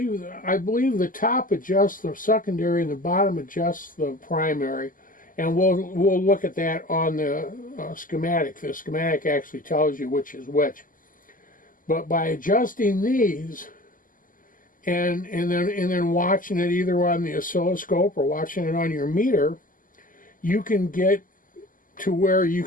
the top adjusts the secondary and the bottom adjusts the primary. And we'll look at that on the schematic. The schematic actually tells you which is which. But by adjusting these and then watching it either on the oscilloscope or watching it on your meter, you can get to where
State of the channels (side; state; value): right; late; 0.39 ms